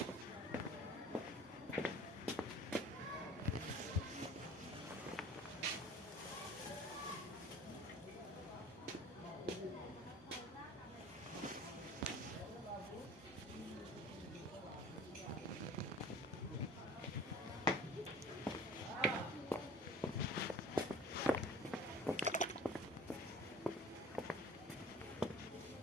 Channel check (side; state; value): both; normal; correlation 0.45